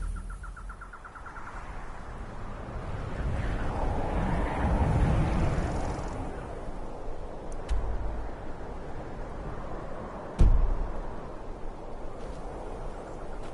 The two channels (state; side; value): identical; both; correlation 1.00